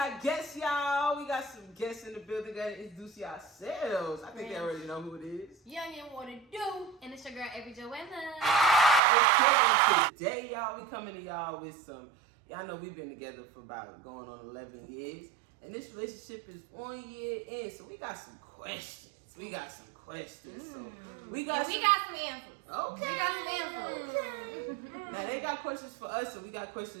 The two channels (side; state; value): left; drops out; at 9.0 s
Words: guests, y'all. We got some guests in the building. Gotta introduce yourselves. I think they already know who it is. Young and what it do? And it's your girl, Every Joanna. Okay, today, y'all, we coming to y'all with some, y'all know we've been together for about going on 11 years. And this relationship is 1 year in, so we got some questions. So we got some answers. Okay. We got some answers. Okay. Now they got questions for us, so we got